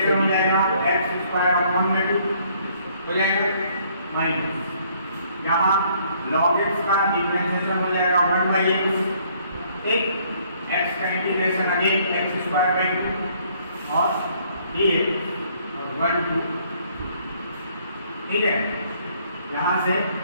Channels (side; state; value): both; inverted; correlation -0.64